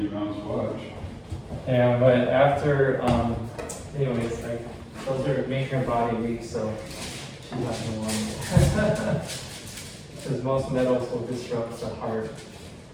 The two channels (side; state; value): both; identical; correlation 1.00